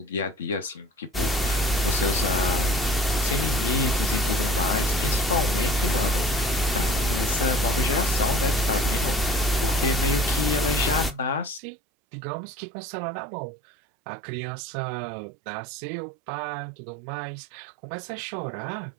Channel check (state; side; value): drops out; left; at 11.6 s